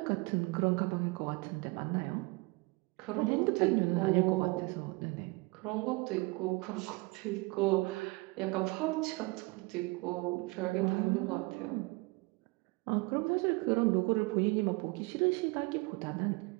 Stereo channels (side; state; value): left; quieter; 25.8 dB